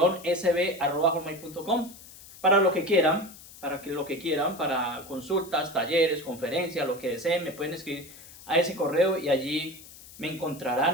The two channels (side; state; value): left; noise; hiss, 19 dB below the sound